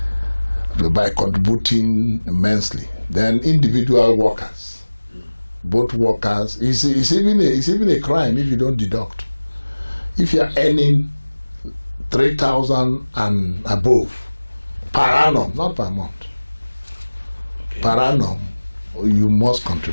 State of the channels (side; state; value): both; inverted; correlation -1.00